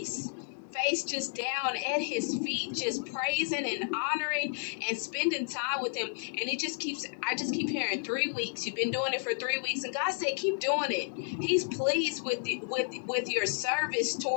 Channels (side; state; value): right; silent; 57 dB below the other